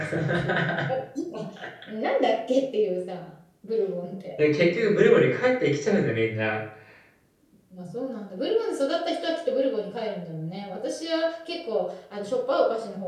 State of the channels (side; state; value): both; identical; correlation 1.00